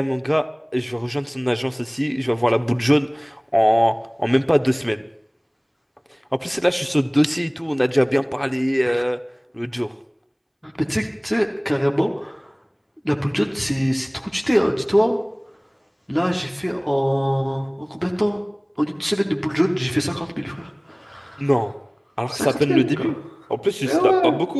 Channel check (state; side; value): identical; both; correlation 1.00